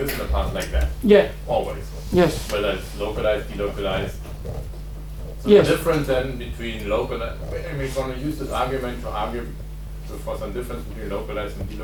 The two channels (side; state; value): both; identical; correlation 1.00